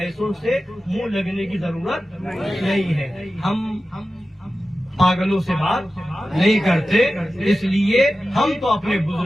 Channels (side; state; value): both; normal; correlation 0.93